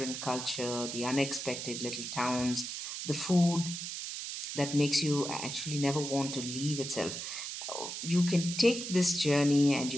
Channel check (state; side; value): noise; right; hiss, 6 dB below the sound